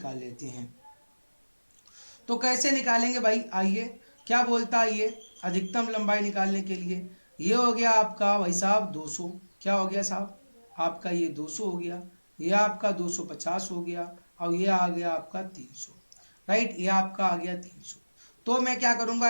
लेते हैं। तो कैसे निकालेंगे भाई? आइए, क्या बोलता है ये अधिकतम लंबाई निकालने के लिए? ये हो गया आपका भाई साहब 200। क्या हो गया साहब? आपका ये 200 हो गया, ये आपका 250 हो गया, और ये आ गया आपका 300। राइट, ये आपका आ गया 300। तो मैं क्या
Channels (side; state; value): both; inverted; correlation -1.00